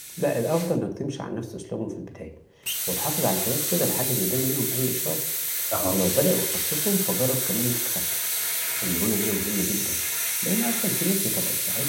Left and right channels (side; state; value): both; identical; correlation 1.00